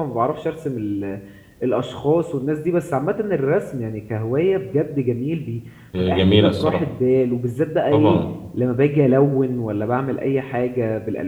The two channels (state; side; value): identical; both; correlation 1.00